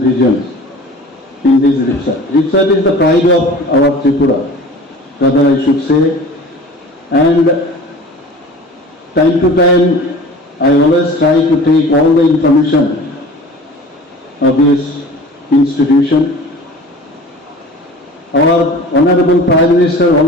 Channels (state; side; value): normal; both; correlation 0.41